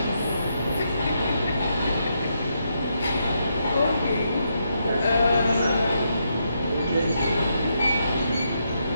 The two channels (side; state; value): both; inverted; correlation -0.80